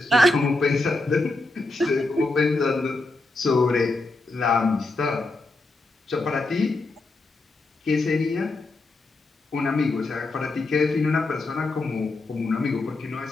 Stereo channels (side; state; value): right; quieter; 3.0 dB